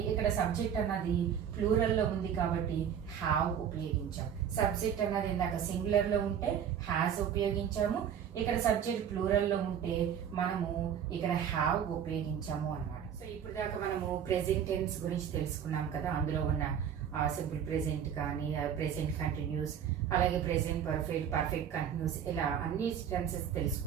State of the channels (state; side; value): quieter; left; 8.6 dB